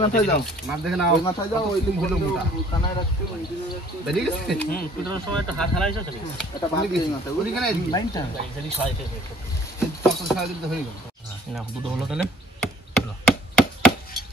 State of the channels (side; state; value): both; normal; correlation 0.55